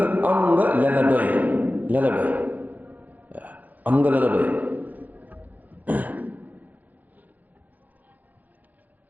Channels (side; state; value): left; late; 0.081 ms